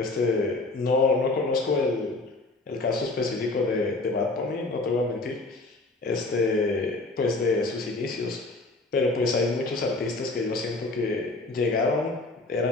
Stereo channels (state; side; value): quieter; right; 3.1 dB